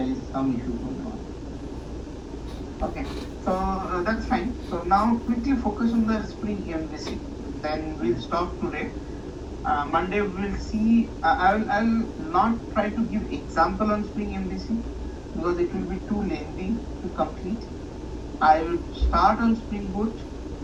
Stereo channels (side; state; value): both; identical; correlation 1.00